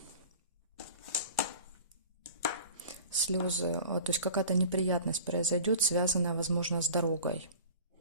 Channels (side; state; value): both; inverted; correlation -0.42